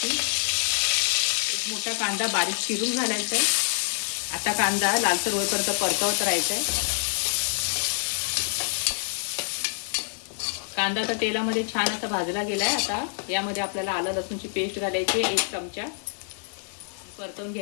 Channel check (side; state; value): right; silent; 61 dB below the other